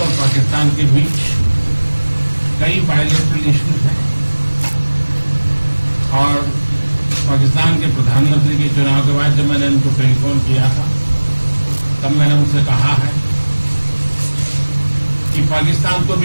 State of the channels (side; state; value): both; inverted; correlation -1.00